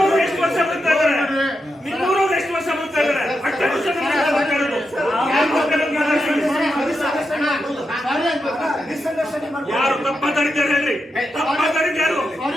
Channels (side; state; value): both; normal; correlation 0.86